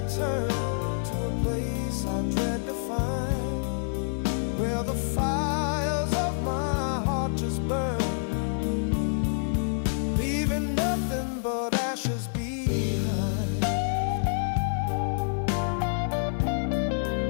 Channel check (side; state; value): right; silent; digital silence